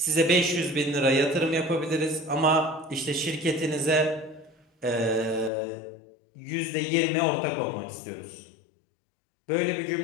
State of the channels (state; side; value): drops out; right; at 5.5 s